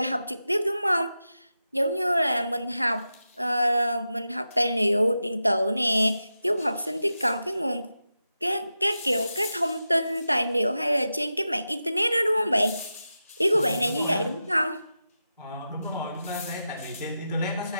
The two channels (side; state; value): both; inverted; correlation -0.91